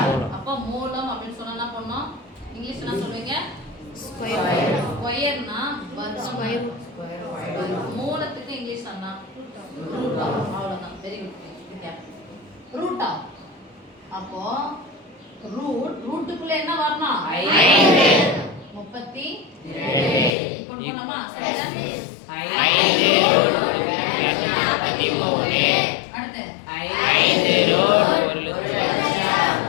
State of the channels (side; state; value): right; drops out; at 20.4 s